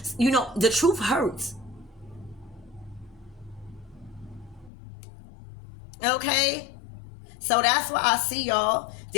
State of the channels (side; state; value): right; drops out; at 4.7 s